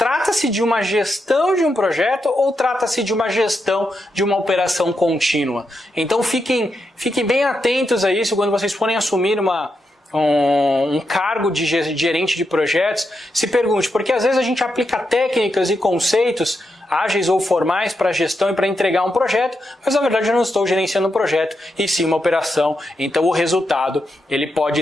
de uma gestão de um projeto ou trata-se de uma gestão de uma operação contínua? Então fiquem bem atentos a isso quando vocês forem assumir um cargo de gerente de projetos. Se pergunte, porque às vezes a gente aplica técnicas e conceitos ágeis ou formais para a gestão e para entregar um projeto, mas na verdade eu não estou gerenciando um projeto e sim uma operação. Então o resultado ele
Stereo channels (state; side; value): normal; both; correlation 0.84